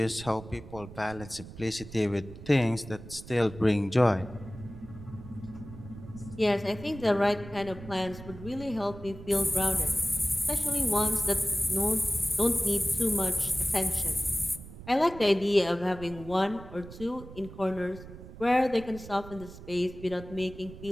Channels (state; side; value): noise; right; rumble, 15 dB below the sound